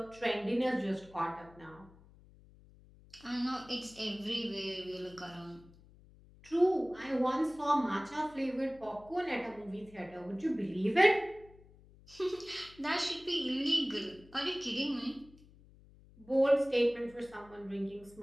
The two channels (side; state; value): left; noise; hum, 24 dB below the sound